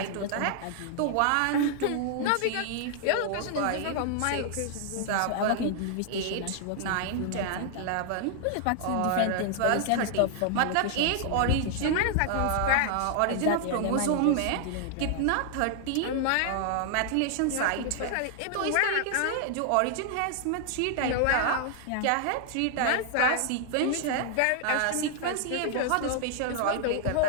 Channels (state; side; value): different; both; correlation 0.00